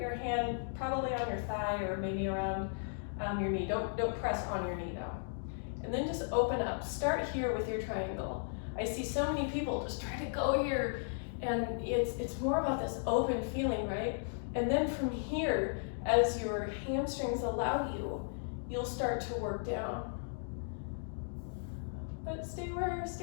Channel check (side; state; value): right; silent; digital silence